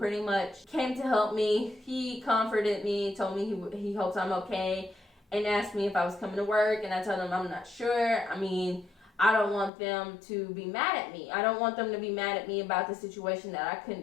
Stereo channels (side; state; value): right; drops out; at 9.7 s